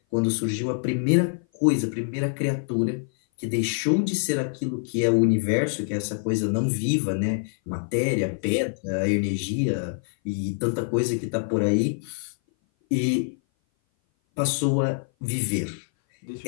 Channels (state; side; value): silent; right; 58 dB below the other